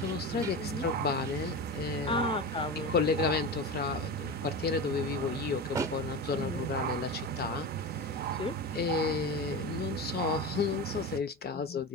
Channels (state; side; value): normal; both; correlation 0.25